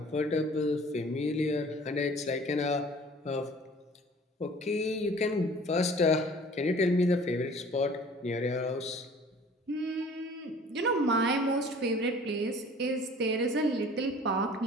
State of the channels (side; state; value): both; normal; correlation 0.49